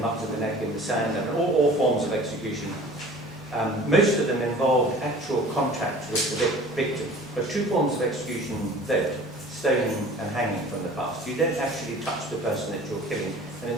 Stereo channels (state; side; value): normal; both; correlation 0.46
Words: up to the neck in the sand, and all forms of execution. Most of them involved actual contact with the victim. But two forms of execution don't: stoning and hanging from the past. You don't actually touch the person that you're killing. And in